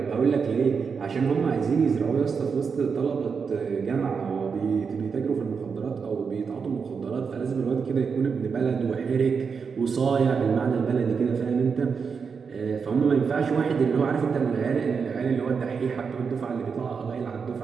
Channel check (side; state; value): left; quieter; 5.7 dB